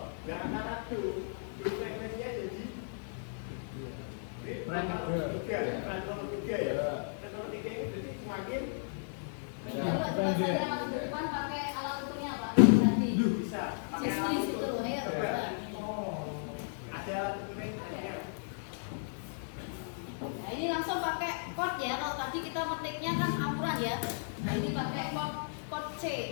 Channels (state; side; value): silent; right; 55 dB below the other